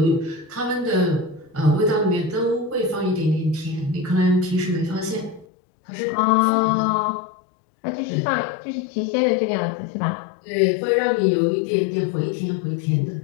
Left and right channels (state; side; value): drops out; right; at 5.5 s